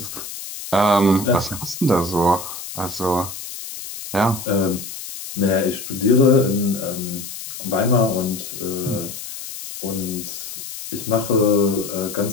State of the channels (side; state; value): left; noise; hiss, 10 dB below the sound